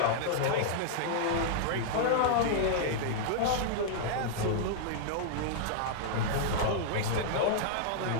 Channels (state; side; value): different; both; correlation -0.01